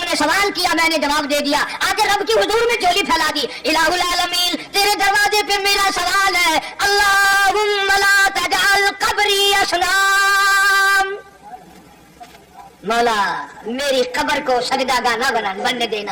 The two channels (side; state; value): both; identical; correlation 1.00